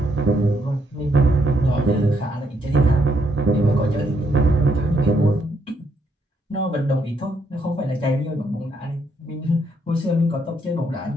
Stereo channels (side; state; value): both; normal; correlation 0.74